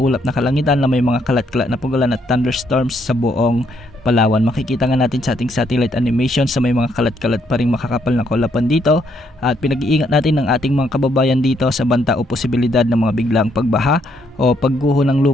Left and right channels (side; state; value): both; normal; correlation 0.72